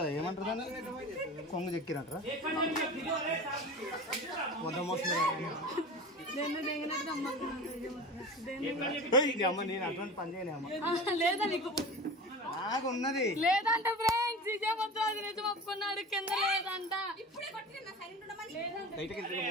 ఏమంటారు దాన్ని, కొంగు చెక్కిరంటారా? మొత్తం అమ్మ నేను అటువంటి పని చేయలే అమ్మ, లేదా నీకు నాకు ఉన్నది లేదంట ఫ్రెండ్స్, ఇదే మొత్తం అది నిజం ఒప్పుకున్నాడు, కింద లేదంట.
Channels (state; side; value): normal; both; correlation 0.33